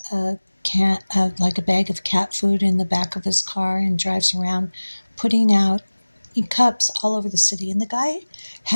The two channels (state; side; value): inverted; both; correlation -1.00